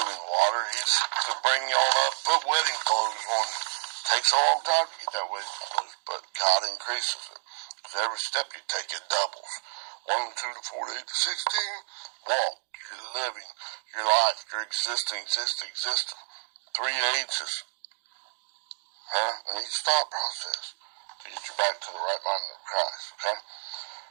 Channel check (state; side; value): silent; left; 58 dB below the other